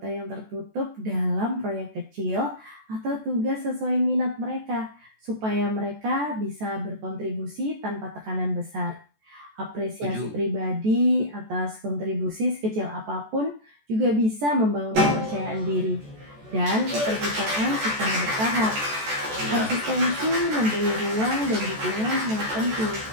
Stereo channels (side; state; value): left; late; 14 ms